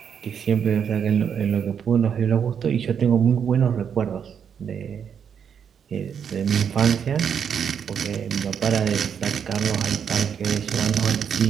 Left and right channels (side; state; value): left; quieter; 7.7 dB